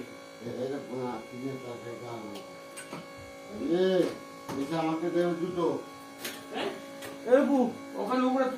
আমাকে দেবে দুটো। ওখানে উপরে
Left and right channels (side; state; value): both; identical; correlation 1.00